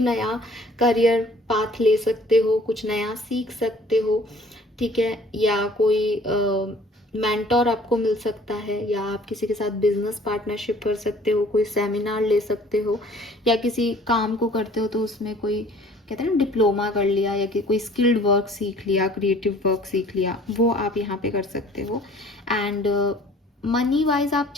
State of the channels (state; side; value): normal; both; correlation 0.53